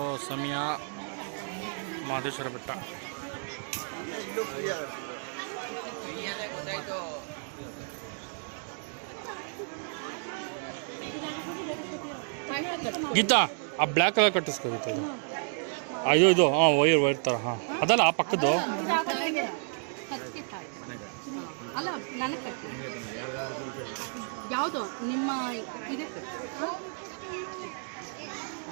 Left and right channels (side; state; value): left; silent; 57 dB below the other